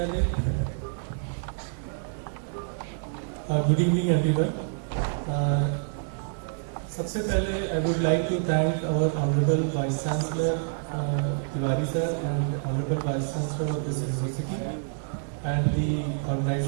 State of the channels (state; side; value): silent; left; digital silence